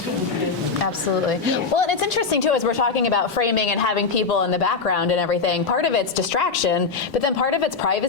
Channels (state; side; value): quieter; right; 4.9 dB